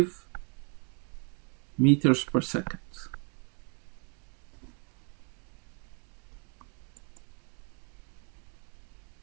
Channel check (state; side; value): quieter; left; 37.5 dB